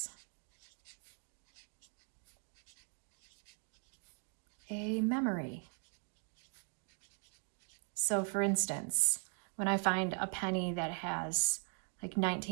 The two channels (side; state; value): left; quieter; 39.2 dB